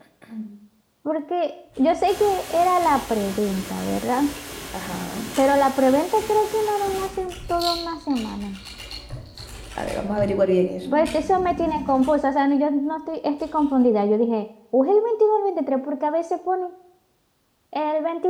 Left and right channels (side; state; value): both; identical; correlation 1.00